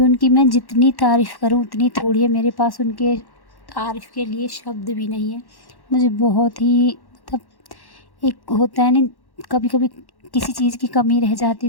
उनकी मैं जितनी तारीफ़ करूँ उतनी थोड़ी है। मेरे पास उनके तारीफ़ के लिए शब्द भी नहीं है। मुझे बहुत ही, मतलब एक होता है ना, कभी कभी किसी चीज़ की कमी रह जाती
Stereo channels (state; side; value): late; right; 1.1 ms